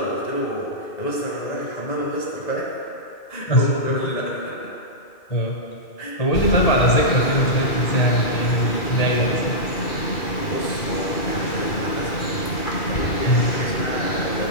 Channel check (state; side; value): late; right; 2.3 ms